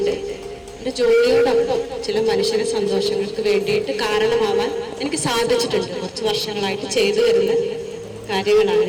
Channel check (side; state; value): both; identical; correlation 1.00